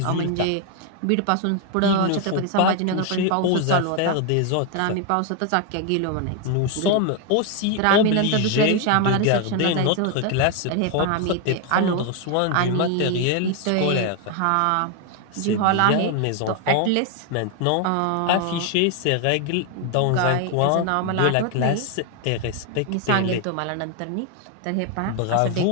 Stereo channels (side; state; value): both; different; correlation 0.01